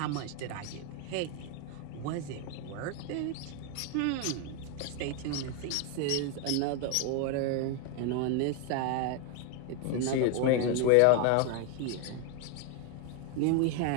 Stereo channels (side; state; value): both; different; correlation 0.01